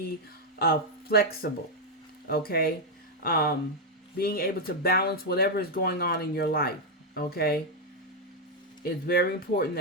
flexible, okay? Being able to balance whatever is going on in your life, okay? It's very important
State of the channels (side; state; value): both; normal; correlation 0.01